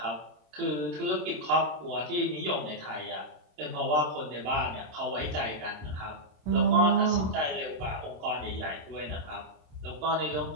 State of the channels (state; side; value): late; left; 27 ms